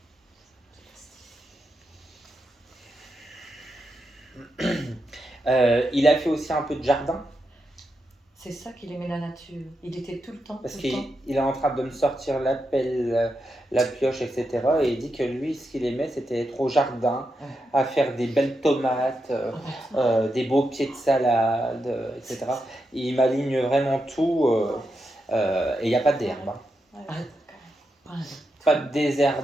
Il a fait aussi un peu de jardin. C'est ça qu'il aimait la nature. Il était tout le temps. Parce tout le temps. qu'il est en train de me sortir la pelle, la pioche, etc. Et il dit que lui, ce qu'il aimait, c'était être au jardin, à faire des belles tomates, des beaux pieds de salade, etc. Et il m'aligne vraiment tout. Et il n'y a pas d'herbe. Hein. Ouais. Ah, pas un- Pas de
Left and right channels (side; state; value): both; normal; correlation 0.85